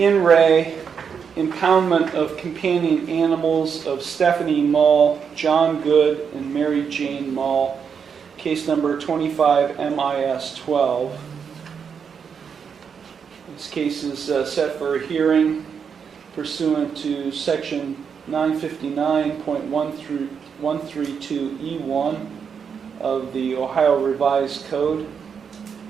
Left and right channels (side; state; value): left; quieter; 6.7 dB